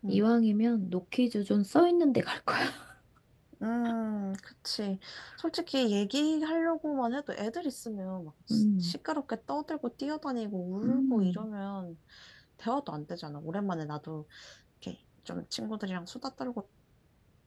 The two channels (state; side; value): identical; both; correlation 1.00